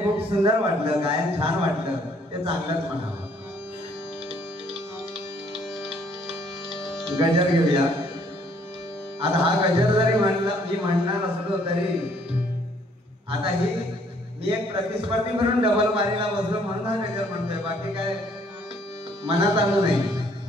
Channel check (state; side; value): normal; both; correlation 0.63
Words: खूप सुंदर वाटलं, गायन छान वाटलं, ते चांगलंच म्हणावं. गजर घेऊया. आता हा गजर जरी मी म्हणणार असलो तरी आता ही मी एक प्रतिस्पर्धी म्हणून डबल बारीला बसलो म्हणून हा गजर म्हणतोय, बाकी काय मनात आलं नाही.